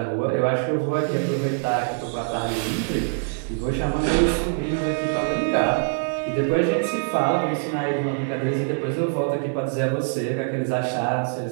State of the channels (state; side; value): silent; left; digital silence